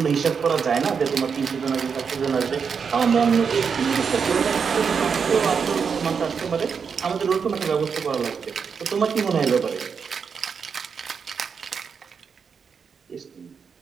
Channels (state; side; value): quieter; left; 6.2 dB